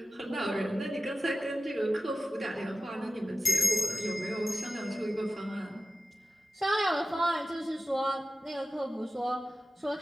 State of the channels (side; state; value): both; normal; correlation 0.94